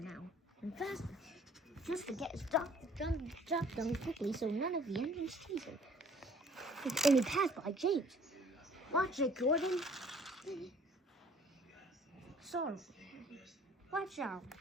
now, and faster, just to get his job done quickly so none of the engines chase him. And he passed by James. Watch it, Gordon. Sorry. Watch out,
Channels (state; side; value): normal; both; correlation 0.55